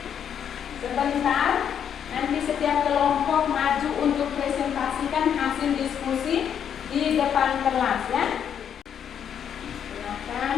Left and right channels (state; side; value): quieter; right; 8.5 dB